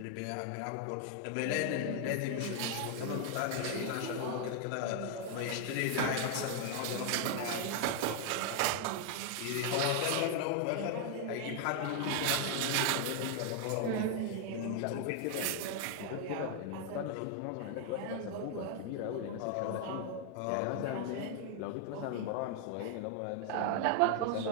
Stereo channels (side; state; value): both; different; correlation 0.00